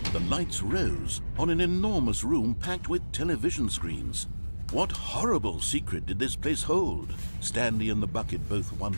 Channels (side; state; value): both; inverted; correlation -1.00